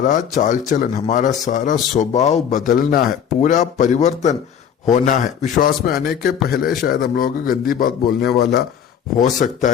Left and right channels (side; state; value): right; quieter; 8.3 dB